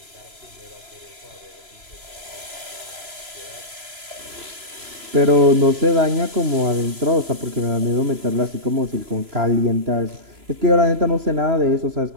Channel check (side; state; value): left; late; 3.0 ms